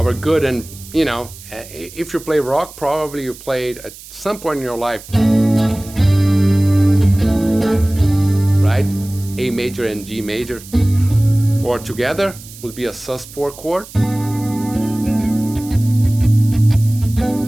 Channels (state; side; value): noise; right; hiss, 18 dB below the sound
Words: good, and you know, if you play rock, probably you played at some point in your life, right? A major and G major, or together would be a sus4 chord.